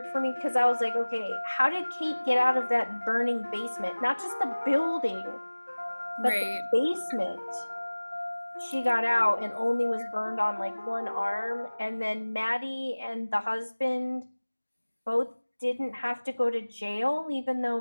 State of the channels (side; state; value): both; inverted; correlation -1.00